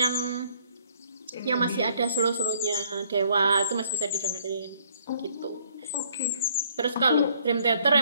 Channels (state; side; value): inverted; both; correlation -0.63